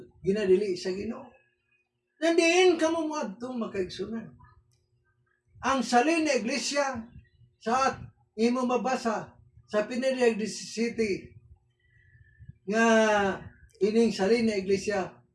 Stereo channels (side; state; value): both; identical; correlation 1.00